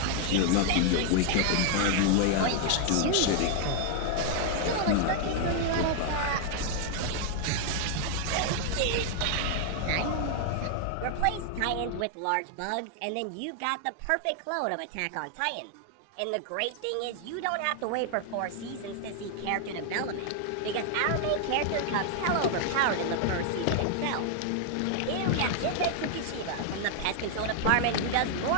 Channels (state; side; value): different; both; correlation 0.00